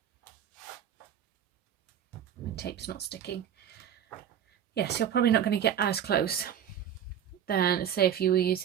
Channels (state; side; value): quieter; left; 9.3 dB